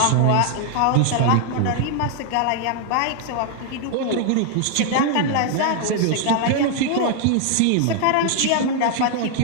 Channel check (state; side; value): different; both; correlation 0.00